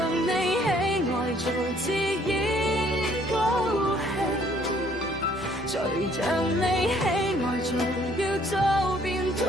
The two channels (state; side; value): normal; both; correlation 0.62